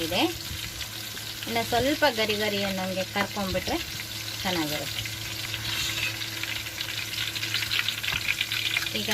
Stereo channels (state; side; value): identical; both; correlation 1.00